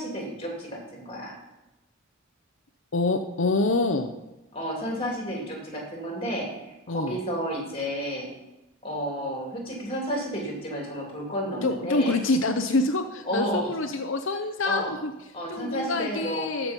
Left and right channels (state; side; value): normal; both; correlation 0.14